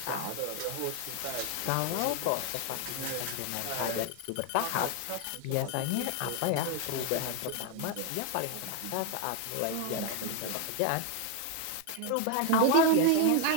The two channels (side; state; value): both; different; correlation 0.01